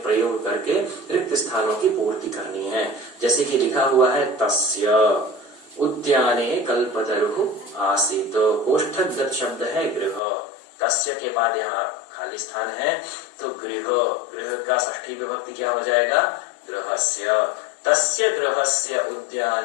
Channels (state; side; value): drops out; right; at 10.2 s